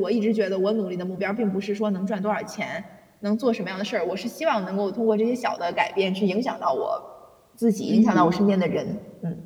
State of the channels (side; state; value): both; identical; correlation 1.00